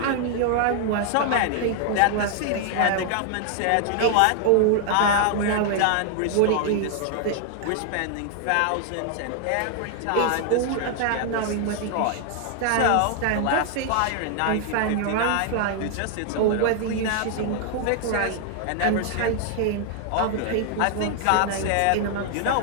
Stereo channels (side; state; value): both; different; correlation 0.00